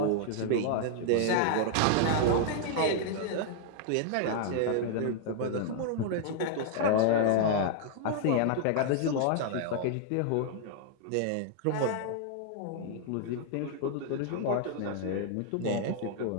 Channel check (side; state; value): both; different; correlation 0.00